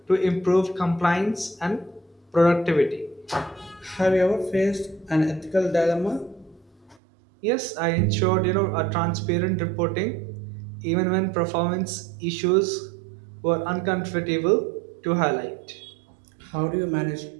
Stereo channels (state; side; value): drops out; left; at 7.0 s